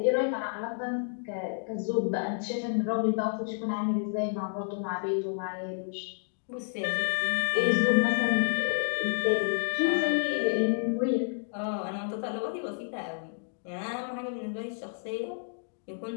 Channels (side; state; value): right; silent; digital silence